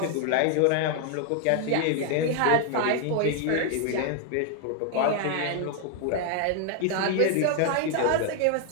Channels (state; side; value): different; both; correlation 0.00